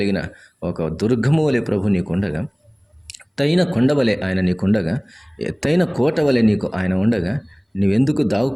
ఒక దుర్గము వలె ప్రభు నీకుండగా, ఎత్తైన కొండ వలె ఆయన నీకుండగా, ఎత్తైన కోట వలె నీకు ఆయన ఉండగా, నువ్వెందుకు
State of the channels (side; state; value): both; identical; correlation 1.00